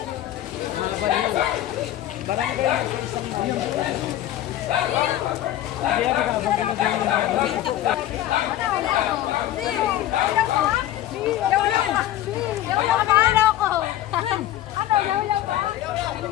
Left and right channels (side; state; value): right; quieter; 13.3 dB